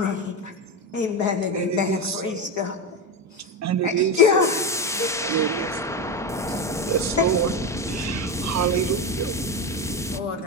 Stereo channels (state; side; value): normal; both; correlation 0.15